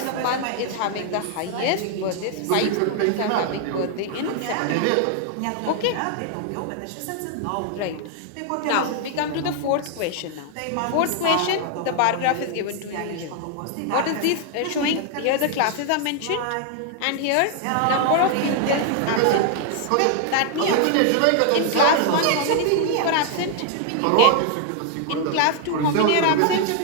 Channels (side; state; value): both; different; correlation 0.00